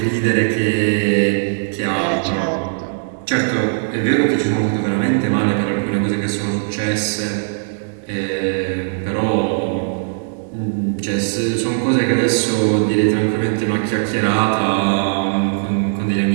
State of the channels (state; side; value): silent; left; digital silence